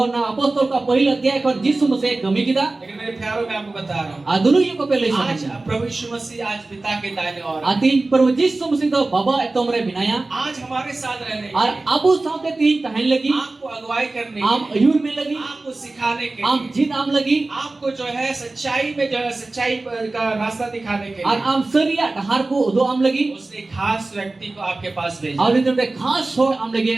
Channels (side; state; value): left; quieter; 3.2 dB